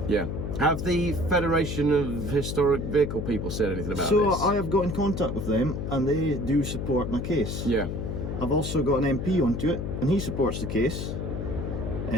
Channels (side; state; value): left; noise; hum, 4 dB below the sound